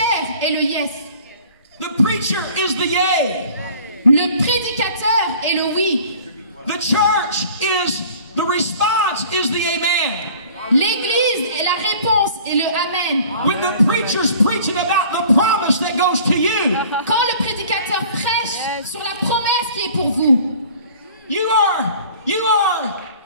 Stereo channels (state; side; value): inverted; both; correlation -0.49